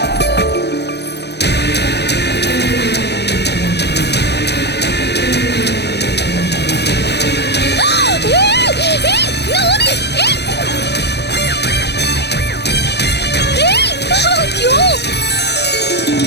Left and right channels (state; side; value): late; right; 0.49 ms